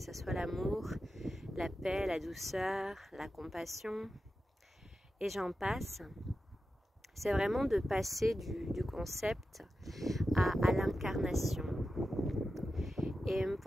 soit l'amour, la paix, la douceur, la compassion, et j'en passe. C'est vraiment de passer du concept à l'incarnation. Et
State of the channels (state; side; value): normal; both; correlation 0.91